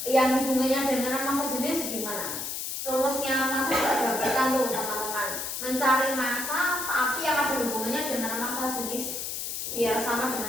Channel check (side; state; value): left; noise; hiss, 4 dB below the sound